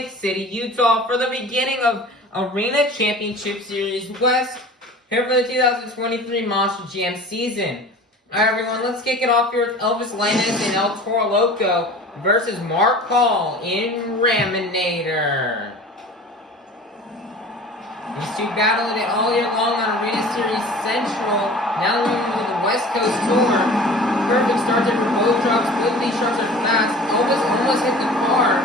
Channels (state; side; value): normal; both; correlation 0.41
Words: City, Utah for the beginning of Arena Championship Series West, here for the 2023 Monster Jam season. Alright, everyone, let's kick it off here with Elvis Lanez and El Toro Loco versus Mark Hall in Raminator. These two battled it all year long on Arena Series Central. Now they're moving to the West Coast Tour. Perfect start there for both drops. Both these shots are fast. Elvis almost hit the car.